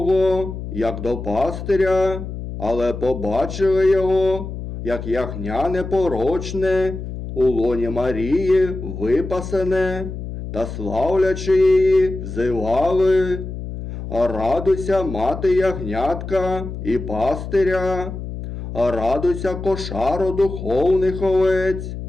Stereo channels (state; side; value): noise; left; hum, 8 dB below the sound